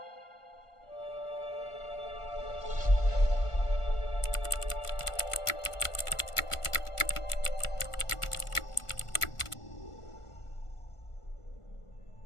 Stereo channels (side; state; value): right; late; 1.4 ms